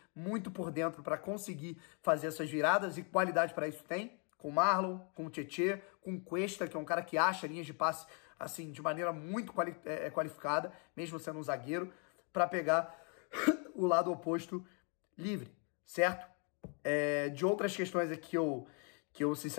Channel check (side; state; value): right; quieter; 38.2 dB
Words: muito por dentro para conseguir fazer essas viradas, e qualidade para isso tem. Com o Marlon, com o Tietê, com o Cuesta, que é um cara que acha linhas de passe assim, de maneira muito qualificada, mesmo sendo um zagueiro, para pegar o lado oposto livre, certo? De outras questões aqui que eu